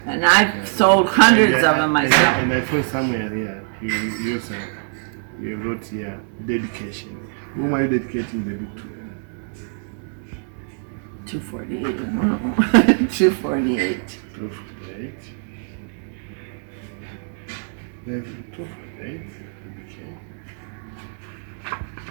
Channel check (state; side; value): silent; left; 64 dB below the other